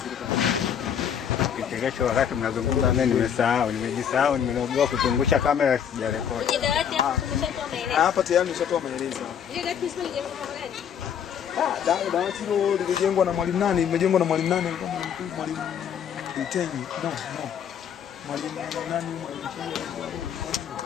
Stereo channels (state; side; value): quieter; right; 8.4 dB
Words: Kesho wakati mnazungumza mimi nimejisahau, nimeogopa kutungusha kamera sijarekodi. Kwenye dawati hapo tumeshatoa maelezo. hapa tayari nimeshatoa maelezo. Ile dawati sio lijengwa kwa gani? Dawati hilo lilijengwa na mwalimu nani? Limejengwa na mwalimu nani? Mwalimu Mtenyi. No. Mwalimu nani?